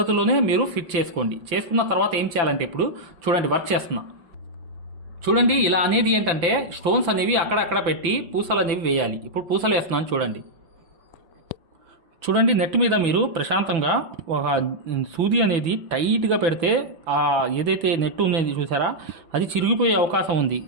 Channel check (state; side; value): late; left; 6.0 ms